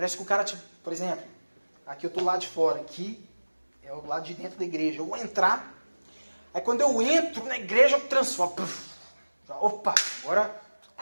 que o cara, tipo, por exemplo, aqui eu estou lá de fora, aqui é o lado de dentro da igreja. Eu vou entrar, aí quando eu entro na igreja eu transformo. Opa, agora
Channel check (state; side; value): inverted; both; correlation -1.00